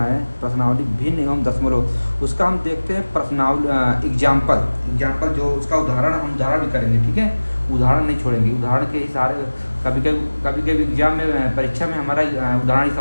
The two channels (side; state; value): both; inverted; correlation -1.00